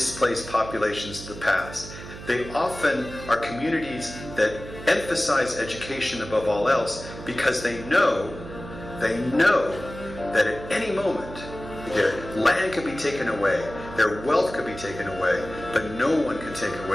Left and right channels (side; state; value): right; noise; hum, 13 dB below the sound